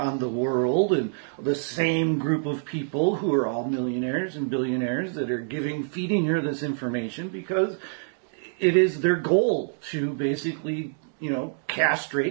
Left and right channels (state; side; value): silent; left; digital silence